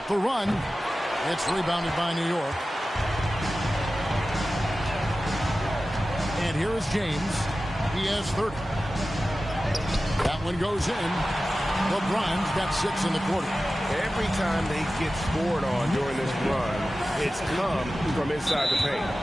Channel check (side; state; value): both; normal; correlation 0.95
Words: the run. It's rebounded by New York. And here is James. He has 30. That one goes in. LeBron's got 6 in the quarter. Every time they get scored on during this run, it's come from inside the paint.